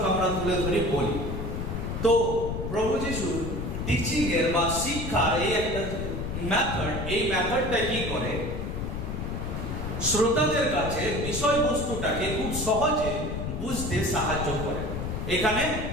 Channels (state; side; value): noise; left; rumble, 4 dB below the sound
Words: আমরা তুলে ধরি বলি। তো প্রভু যীশুর টিচিং এর বা শিক্ষার এই একটা মেথড, এই মেথডটা কি করে, শ্রোতাদের কাছে বিষয়বস্তুটাকে খুব সহজে বুঝতে সাহায্য করে। এখানে